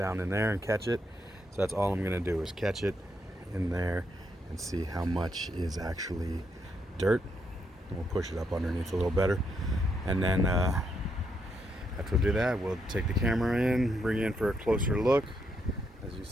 in there and catch it. So that's all I'm going to do is catch it in there and see how much is actually dirt. And we'll push it up underneath a little better. And then after we do that, we'll take the camera in, bring it in for a closer look. As you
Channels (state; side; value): normal; both; correlation 0.78